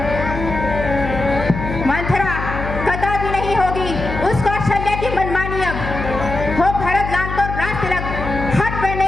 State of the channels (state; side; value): noise; left; hum, 6 dB below the sound